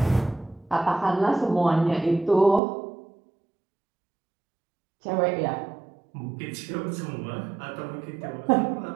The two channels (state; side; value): drops out; left; at 2.6 s